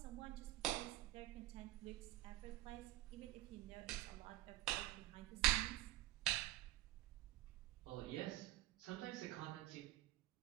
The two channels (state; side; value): quieter; left; 15.6 dB